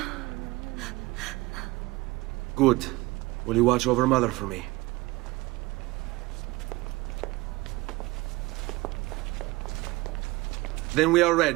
Good. Will you watch over Mother for me? Then we are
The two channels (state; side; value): quieter; left; 21.2 dB